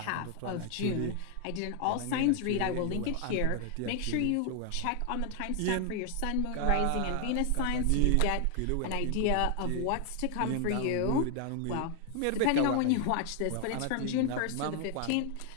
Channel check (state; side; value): different; both; correlation 0.00